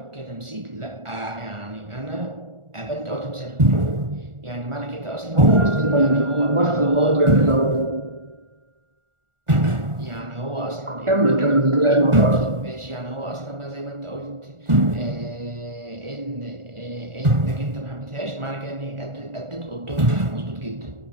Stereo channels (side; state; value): left; late; 1.4 ms